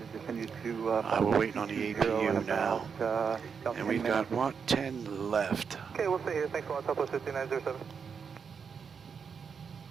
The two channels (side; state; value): left; quieter; 6.3 dB